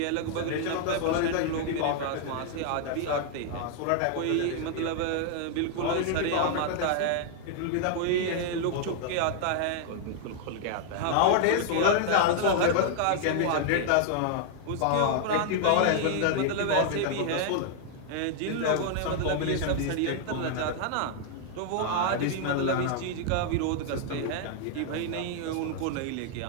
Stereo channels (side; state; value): both; different; correlation 0.00